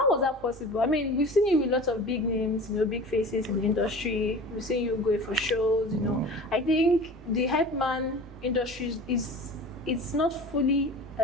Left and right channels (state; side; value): normal; both; correlation 0.38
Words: was that possible? I mean, we've seen you with lots of big names, big faces in the industry. We've seen you going for shows. I think the hype man industry it's not fully